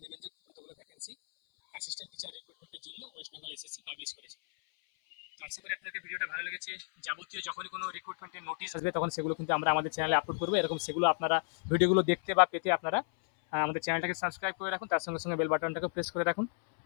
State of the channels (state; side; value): silent; right; 56 dB below the other